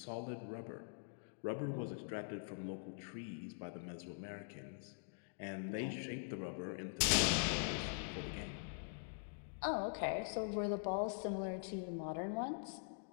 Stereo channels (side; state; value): right; silent; digital silence